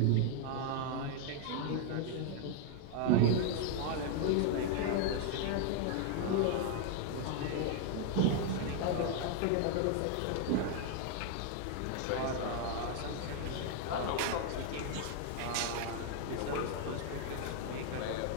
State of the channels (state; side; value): different; both; correlation 0.00